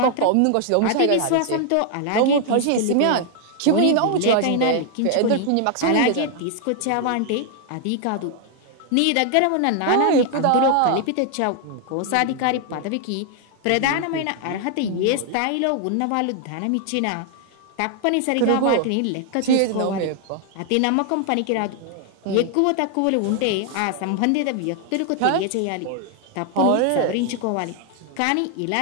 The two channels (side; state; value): both; different; correlation 0.00